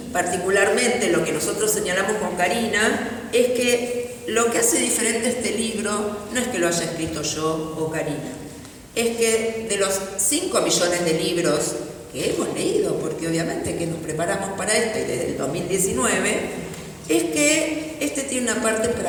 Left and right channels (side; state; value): both; identical; correlation 1.00